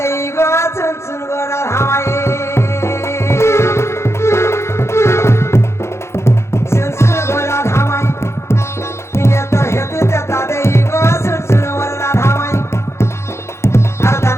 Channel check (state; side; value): late; right; 0.13 ms